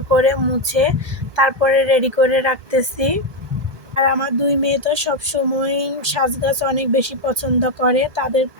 করে মুছে তারপরে রেডি করে রাখতেছি। আর আমার দুই মেয়ে তো সবসময় সাজগাছ অনেক বেশি পছন্দ করে, তাদের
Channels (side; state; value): left; late; 1.2 ms